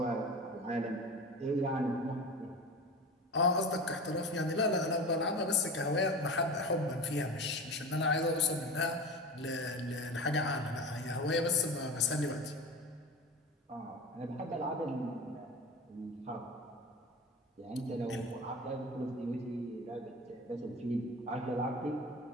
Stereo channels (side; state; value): both; normal; correlation 0.31